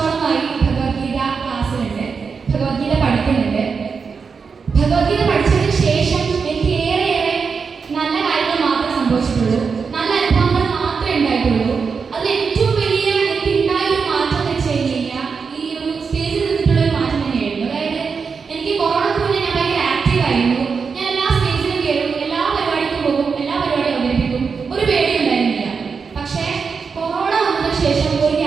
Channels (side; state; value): left; quieter; 5.5 dB